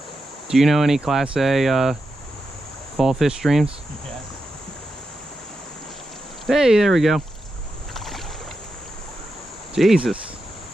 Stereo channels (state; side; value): normal; both; correlation 0.88